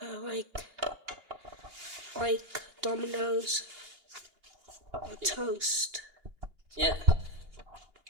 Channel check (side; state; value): left; late; 2.8 ms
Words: Like Domino's or toast. Yeah.